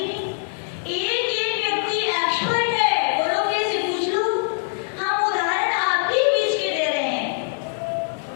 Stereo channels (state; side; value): silent; right; 64 dB below the other